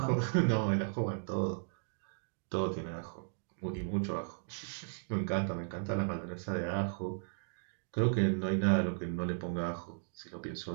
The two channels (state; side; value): silent; left; digital silence